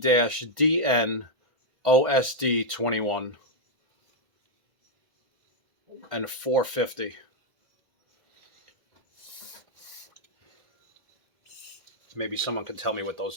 OSD 21 and 450. Maybe someone can tell me what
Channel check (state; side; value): late; left; 1.5 ms